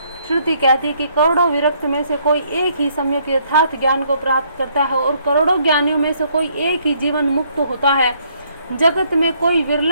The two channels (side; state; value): both; inverted; correlation -0.68